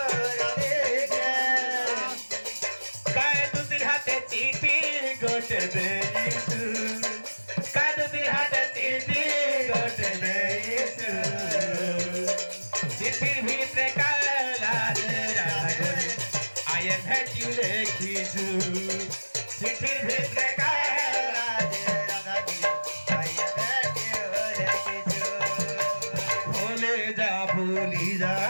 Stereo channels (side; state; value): both; inverted; correlation -1.00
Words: রাধিকা কায় দুদির হাতে চিঠি গোটে দেইছু কায় দুদির হাতে চিঠি গোটে দেইছু চিঠির ভিতরে কালা রে রাগরে আই এম হ্যাট ইউ লেখিছু চিঠির ভিতরে কালা ভুলে যা ভুলি যা